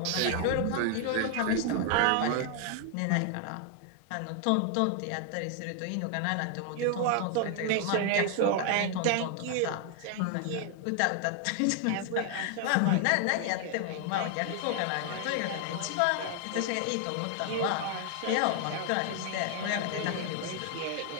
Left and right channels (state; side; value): different; both; correlation 0.00